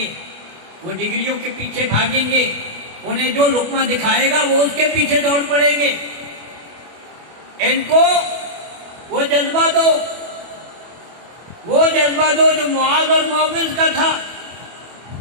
وہ ڈگریوں کے پیچھے بھاگیں گے، انہیں جو لقمہ دکھائے گا وہ اس کے پیچھے دوڑ پڑیں گے۔ ان کو وہ جذبہ دو، وہ جذبہ دو جو معاذ اور معوذ کا تھا،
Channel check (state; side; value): late; left; 24 ms